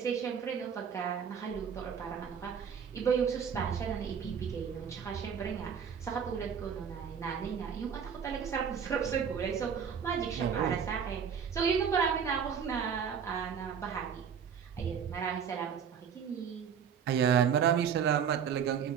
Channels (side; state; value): left; quieter; 7.4 dB